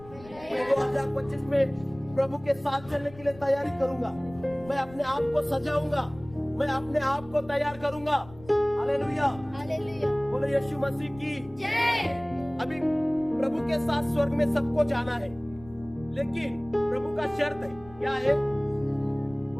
मैं 2025 में प्रभु के साथ चलने के लिए तैयारी करूंगा। मैं अपने आप को सजाऊंगा, मैं अपने आप को तैयार करूंगा। हालेलुया। बोलो यीशु मसीह की जय। अभी प्रभु के साथ स्वर्ग में सबको जाना है, लेकिन प्रभु का शर्त है। क्या है?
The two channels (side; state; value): left; noise; rumble, 20 dB below the sound